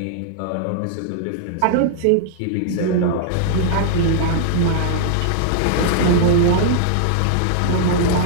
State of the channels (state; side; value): different; both; correlation -0.01